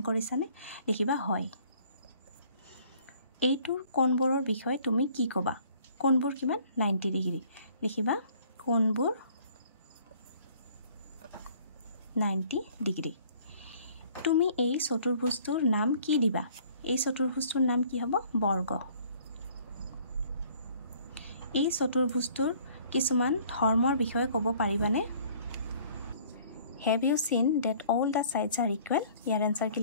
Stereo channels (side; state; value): both; inverted; correlation -0.56